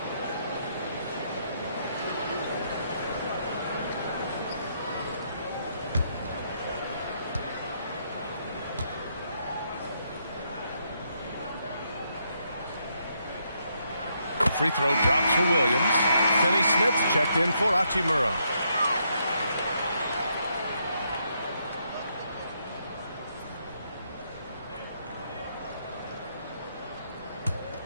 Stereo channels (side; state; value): both; inverted; correlation -0.76